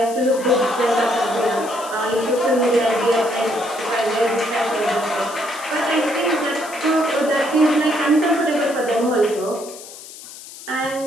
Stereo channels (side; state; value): left; noise; hiss, 15 dB below the sound